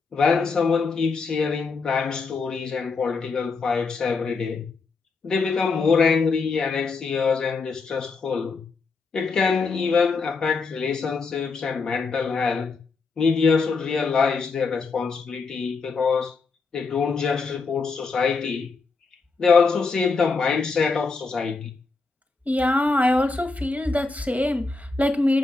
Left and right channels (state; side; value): quieter; right; 4.3 dB